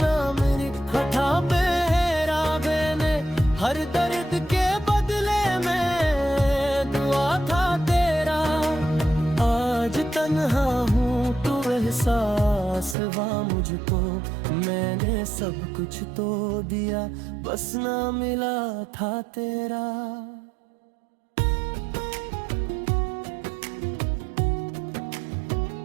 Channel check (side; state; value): left; drops out; at 13.0 s